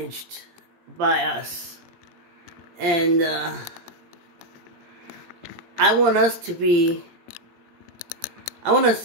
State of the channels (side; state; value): left; late; 17 ms